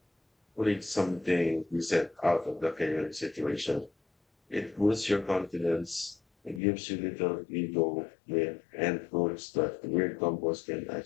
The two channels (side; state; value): right; drops out; at 6.6 s